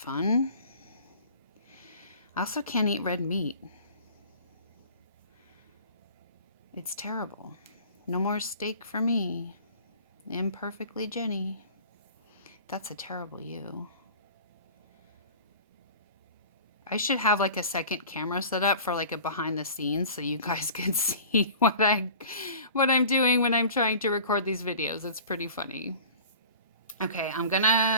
I also can't eat red meat. It's terrible. No more steak for me. Imperfectly Jenny. That's a terrible you. I should have like a second camera set up for like a behind the scenes so you guys can see what I'm doing when I'm trying to record these videos. It's pretty funny. Okay, I'm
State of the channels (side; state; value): both; inverted; correlation -0.43